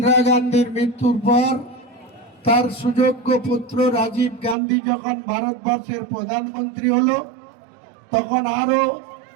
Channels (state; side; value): drops out; left; at 4.5 s